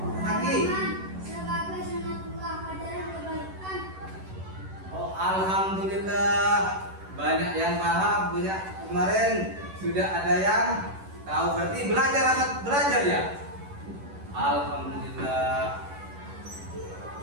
Lagi. Sebagai sunatullah ajaran kebaikan. Oh, alhamdulillah banyak yang paham, banyak kemarin sudah ada yang tahu. Berarti belajar ya. Alhamdulillah.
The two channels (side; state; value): left; late; 11 ms